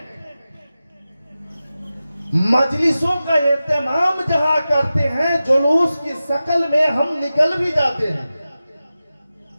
مجلسوں کا اہتمام جہاں کرتے ہیں، جلوس کی شکل میں ہم نکل بھی جاتے ہیں،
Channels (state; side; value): inverted; both; correlation -0.94